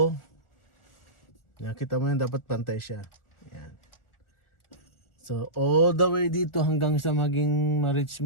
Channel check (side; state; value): right; late; 1.4 ms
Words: Yan, kita mo yan, dapat pantay siya. Yan. So all the way dito hanggang sa maging ma-reach